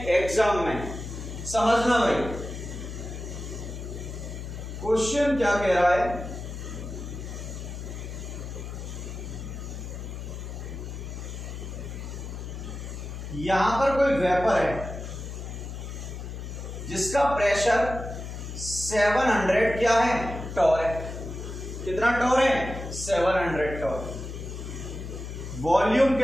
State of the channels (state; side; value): noise; left; hum, 8 dB below the sound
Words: एग्जाम में। समझना भाई क्वेश्चन क्या कह रहा है। यहां पर कोई वेपर है जिसका प्रेशर 700 क्या है, टॉर है। कितना टॉर है, 700 टॉर। वॉल्यूम